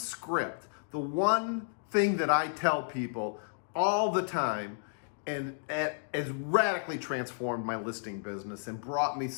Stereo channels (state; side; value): silent; right; digital silence